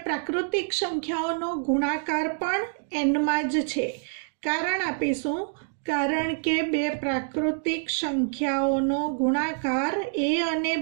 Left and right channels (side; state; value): left; silent; digital silence